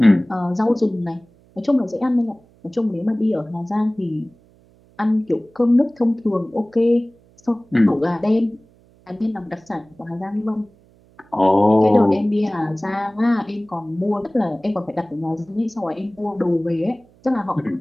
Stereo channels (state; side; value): noise; right; hum, 30 dB below the sound